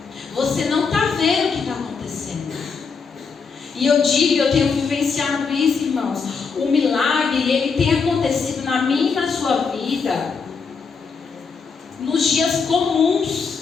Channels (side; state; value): right; quieter; 5.3 dB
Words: Você não está vendo o que está acontecendo. E eu digo, eu tenho vivenciado isso, irmãos. O milagre, ele tem acontecido na minha e na sua vida nos dias comuns.